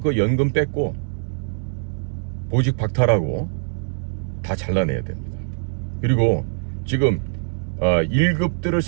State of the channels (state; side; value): silent; left; 59 dB below the other